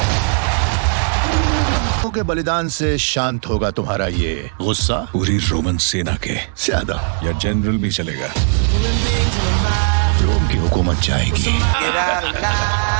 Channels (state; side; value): silent; left; 60 dB below the other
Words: के बलिदान से शांत होगा तुम्हारा ये गुस्सा। पूरी रोमन सेना के ज्यादा या जनरल भी चलेगा। रोम की हुकूमत जाएगी।